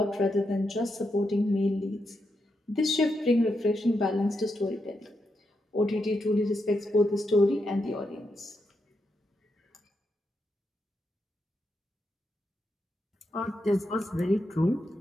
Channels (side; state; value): both; normal; correlation 0.83